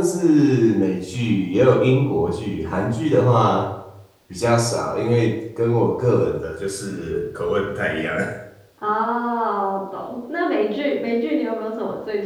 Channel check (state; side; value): identical; both; correlation 1.00